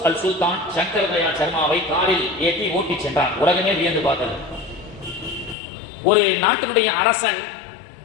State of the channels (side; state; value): right; drops out; at 5.6 s